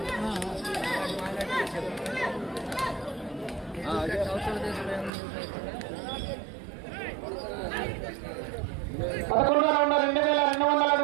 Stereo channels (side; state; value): left; drops out; at 5.1 s